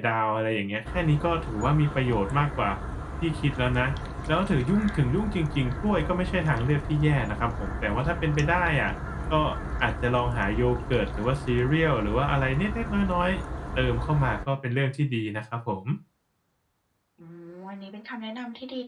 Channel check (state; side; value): identical; both; correlation 1.00